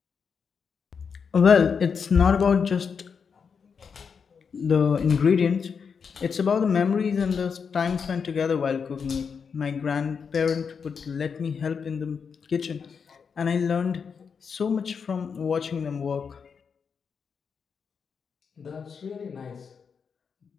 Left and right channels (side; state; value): right; quieter; 6.1 dB